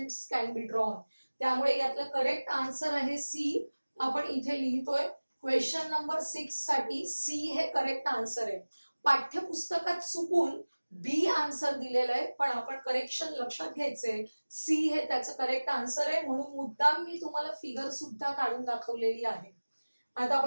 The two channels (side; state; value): both; inverted; correlation -1.00